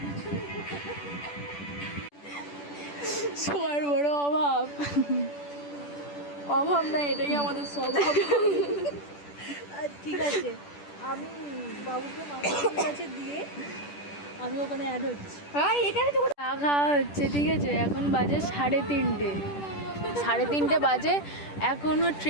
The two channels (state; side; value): late; right; 10 ms